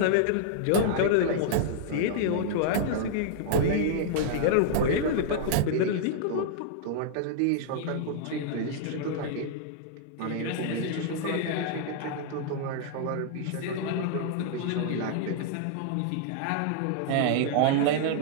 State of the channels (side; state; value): both; different; correlation -0.01